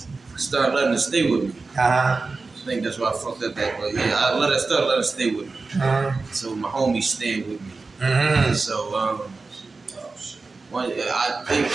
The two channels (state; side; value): quieter; left; 3.9 dB